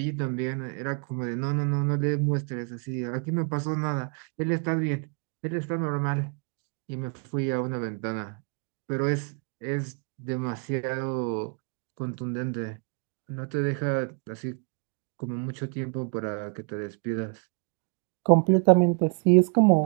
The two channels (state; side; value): quieter; left; 38.6 dB